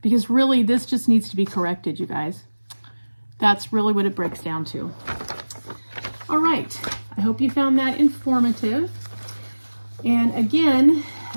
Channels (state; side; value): inverted; both; correlation -1.00